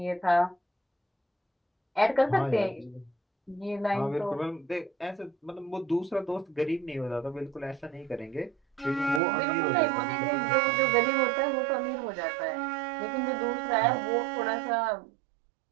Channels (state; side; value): drops out; left; at 9.2 s